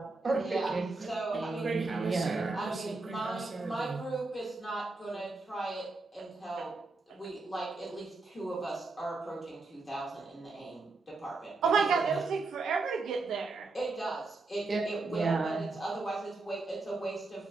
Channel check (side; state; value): left; quieter; 3.6 dB